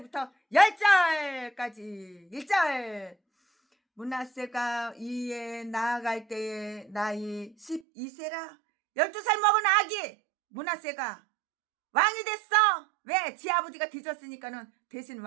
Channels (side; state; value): left; drops out; at 7.8 s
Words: 10절까지. 1절. 므낫세가 이에 나아갈 때에 나이 12세라. 12살 먹은 아기 므낫세가 왕이 됐어. 왜? 지 아버지가 뒤졌으니까는 대신